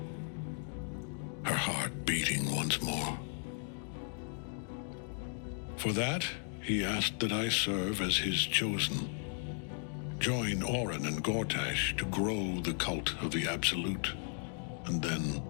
her heart beating once more. For that, he asked that I serve as his chosen. Join Orin and Gortash to grow the cult of the Absolute, and then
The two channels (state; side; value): silent; right; 54 dB below the other